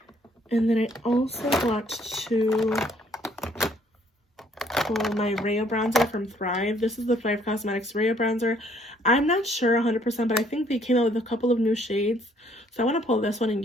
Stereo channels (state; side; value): normal; both; correlation 0.64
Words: And then I also want to pull my Rhea bronzer from Thrive. This is the Thrive Cosmetics Rhea bronzer. I'm not sure 100%, but I think they came out with a couple of new shades. So I want to pull this one and